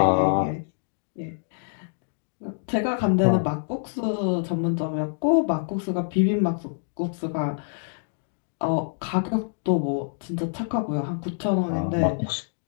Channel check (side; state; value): right; silent; digital silence